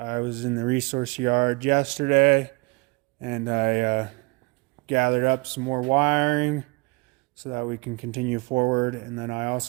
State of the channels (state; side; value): quieter; left; 27.0 dB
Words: in the resource yard yesterday and I gathered up some more wiring so that we can continue forward. And then I